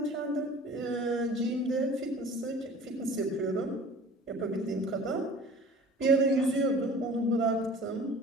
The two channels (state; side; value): normal; both; correlation 0.44